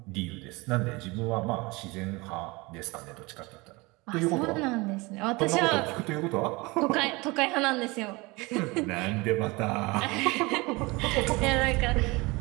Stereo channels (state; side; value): quieter; left; 24.4 dB